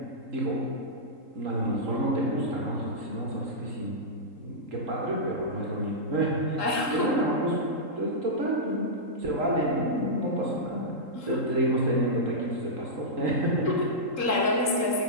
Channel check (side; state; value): left; late; 3.8 ms